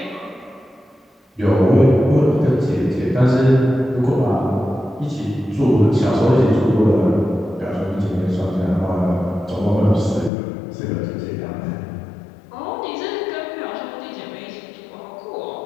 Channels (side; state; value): right; drops out; at 10.3 s